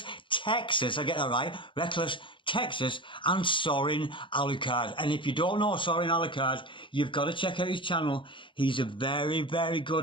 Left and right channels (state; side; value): late; right; 0.24 ms